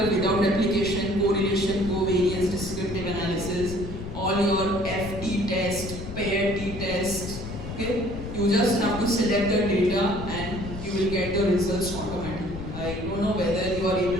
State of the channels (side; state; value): left; noise; rumble, 9 dB below the sound